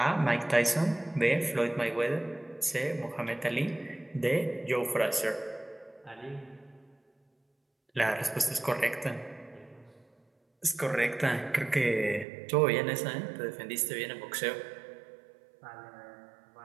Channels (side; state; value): left; drops out; at 12.2 s